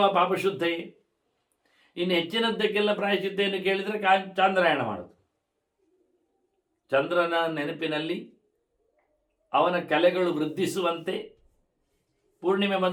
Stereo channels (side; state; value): both; identical; correlation 1.00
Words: ಪಾಪಶುದ್ಧೈ. ಇನ್ನು ಹೆಚ್ಚಿನದ್ದಕ್ಕೆಲ್ಲ ಪ್ರಾಯಶ್ಚಿತ್ತೆಯನ್ನು ಕೇಳಿದರೆ ಚಾಂದ್ರಾಯಣ ಮಾಡೋದು. ಚಂದ್ರನ ನೆನಪಿನಲ್ಲಿ ಅವನ ಕಲೆಗಳು ವೃದ್ಧಿಸುವಂತೆ, ಪೂರ್ಣಿಮೆ